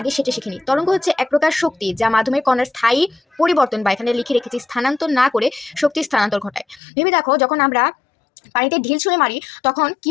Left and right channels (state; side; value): drops out; right; at 6.8 s